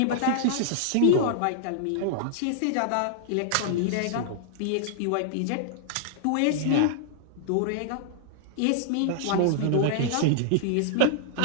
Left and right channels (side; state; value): both; different; correlation -0.01